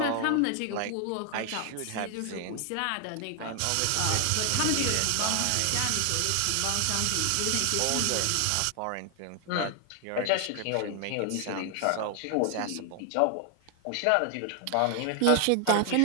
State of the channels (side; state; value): both; different; correlation 0.00